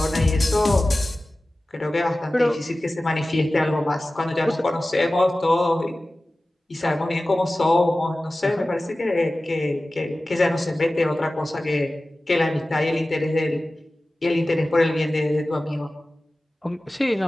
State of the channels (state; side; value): normal; both; correlation 0.96